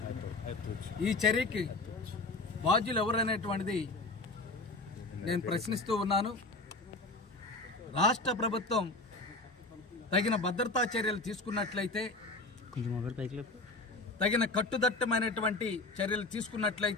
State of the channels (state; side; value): quieter; right; 3.1 dB